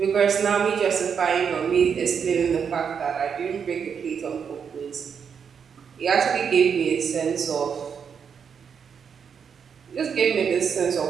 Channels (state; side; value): quieter; left; 6.9 dB